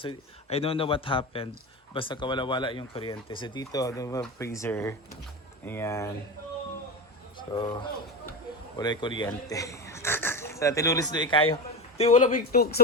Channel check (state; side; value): normal; both; correlation 0.22